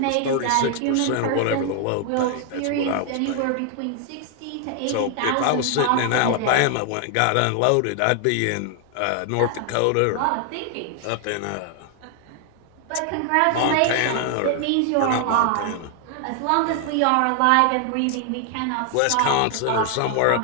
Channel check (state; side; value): different; both; correlation 0.00